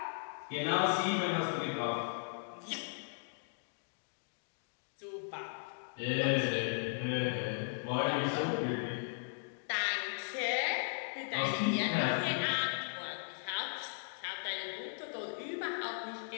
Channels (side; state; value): right; silent; digital silence